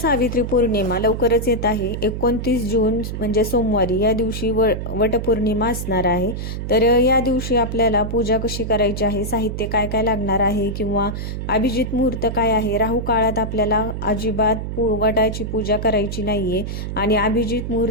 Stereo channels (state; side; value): noise; right; hum, 5 dB below the sound